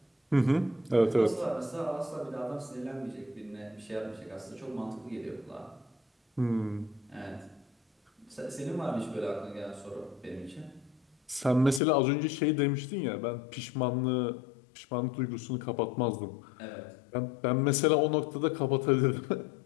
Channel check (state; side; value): drops out; right; at 11.8 s